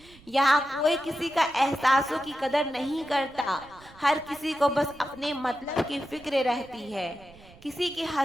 यहाँ कोई किसी का एहसासों की कदर नहीं करता, हर किसी को बस अपने मतलब की फिक्र रहती है। किसी की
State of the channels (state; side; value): noise; right; rumble, 24 dB below the sound